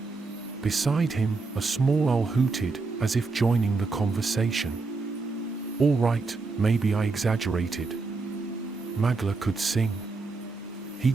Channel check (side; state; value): left; quieter; 4.0 dB